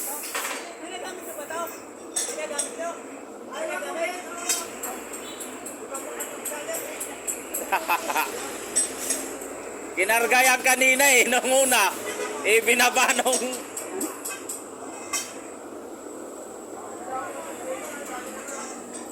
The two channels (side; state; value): both; identical; correlation 1.00